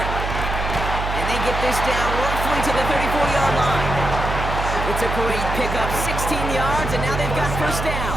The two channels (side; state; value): right; noise; hum, 3 dB below the sound